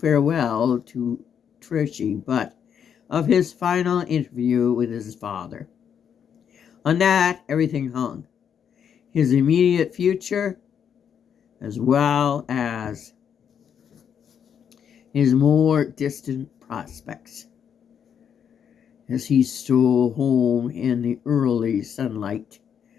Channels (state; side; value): quieter; right; 8.0 dB